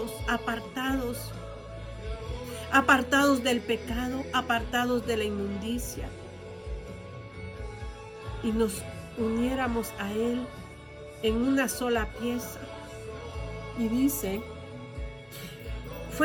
apartados del pecado, apartados de la inmundicia, y nos uniéramos a Él en una sola pieza. Y dice,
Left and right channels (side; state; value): both; identical; correlation 1.00